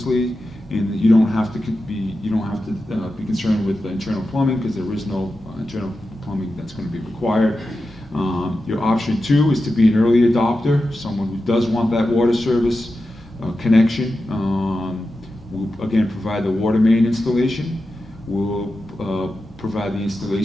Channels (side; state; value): both; normal; correlation 0.91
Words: and you don't have to be concerned with the internal plumbing because there is no internal plumbing that's going to be required. Your option 2 is to be an early adopter, someone who does want that water service connection. We'll again provide the water main installation. We'll provide the